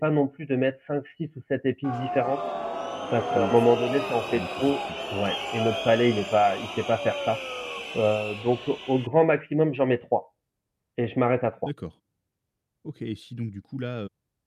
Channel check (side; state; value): both; identical; correlation 1.00